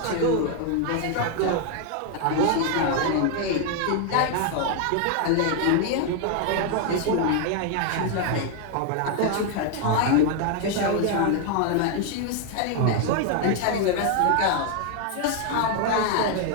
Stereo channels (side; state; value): both; different; correlation 0.01